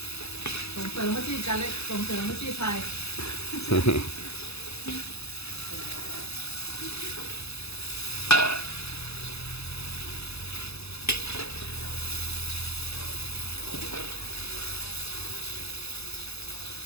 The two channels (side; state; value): right; late; 0.79 ms